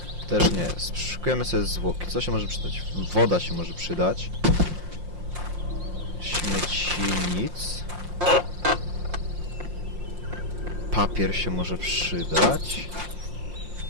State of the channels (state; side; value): late; left; 5.7 ms